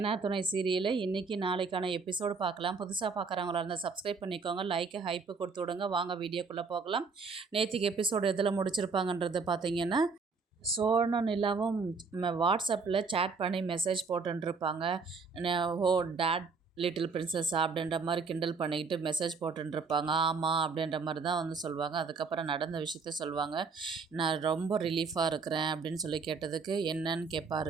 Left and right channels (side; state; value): left; quieter; 4.7 dB